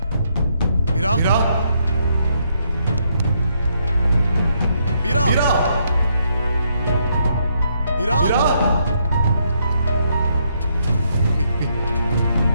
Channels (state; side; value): inverted; both; correlation -0.74